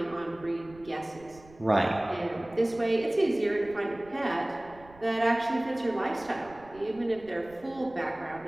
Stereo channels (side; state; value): right; noise; rumble, 23 dB below the sound